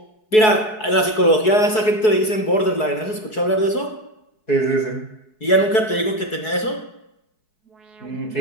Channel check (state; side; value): late; right; 4.7 ms